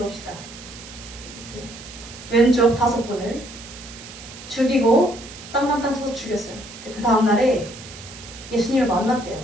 왼쪽 5분을 죽이고 땅만땅 쳐서 죽였어요. 그 다음날에 예수님을 만났대요.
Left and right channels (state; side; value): noise; right; hiss, 15 dB below the sound